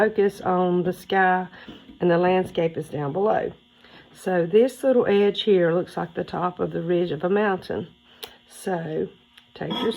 on the sky and the landscape is down below. So this little edge here looks like the top of the ridge of a mountain. So take your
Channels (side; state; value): both; identical; correlation 1.00